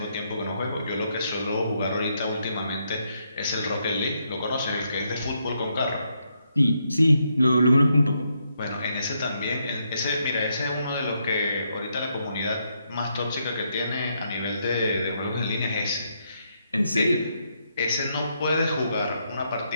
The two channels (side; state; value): both; inverted; correlation -0.78